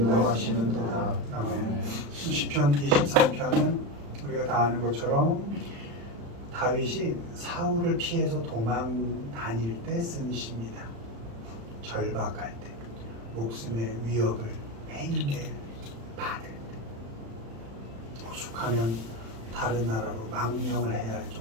아멘. 시편 23편은 우리가 다 아는 것처럼 다윗이 사울을 피해서 도망 다닐 때 쓴 시입니다. 절박할 때, 목숨의 위협을 매일매일 받을 때, 오죽하면 다른 나라로 망명을 해야 할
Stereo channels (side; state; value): left; late; 35 ms